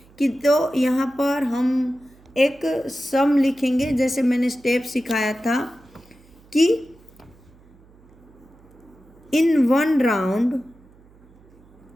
कि। तो यहाँ पर हम एक सम लिखेंगे, जैसे मैंने स्टेप सिखाया था कि इन 1 राउंड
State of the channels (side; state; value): right; noise; hum, 27 dB below the sound